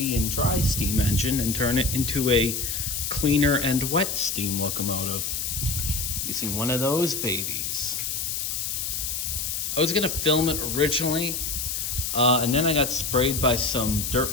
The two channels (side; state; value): left; noise; hiss, 2 dB below the sound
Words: and dry steam engine and turn it into a cleaner and wet steam locomotive using one of those babies. I was gonna film it originally, and then I got sprayed by some dirt